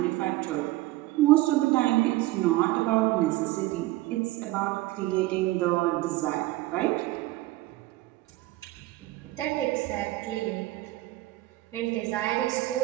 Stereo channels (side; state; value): left; quieter; 17.9 dB